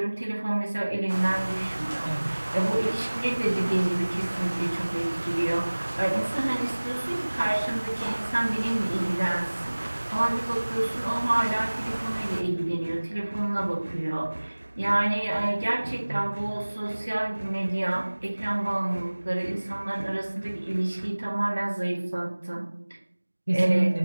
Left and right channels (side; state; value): both; inverted; correlation -1.00